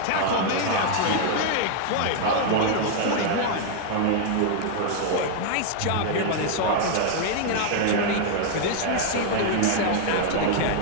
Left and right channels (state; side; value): different; both; correlation 0.00